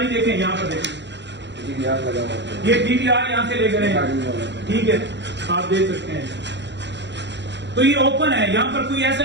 देखें, यहाँ पर देखें, DVR लगा हुआ है। ये DVR यहाँ से लेकर गए। ठीक है, आप देख सकते हैं। तो ये ओपन है, यहाँ पर कोई ऐसा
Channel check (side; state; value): left; late; 0.52 ms